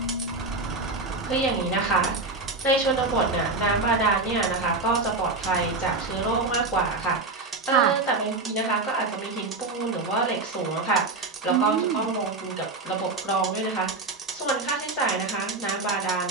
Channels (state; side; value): quieter; left; 3.5 dB